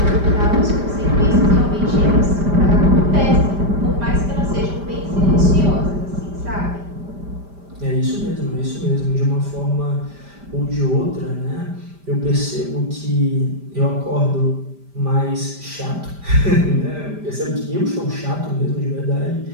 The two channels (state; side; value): late; left; 5.0 ms